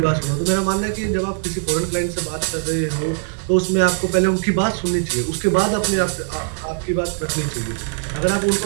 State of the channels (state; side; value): silent; left; 65 dB below the other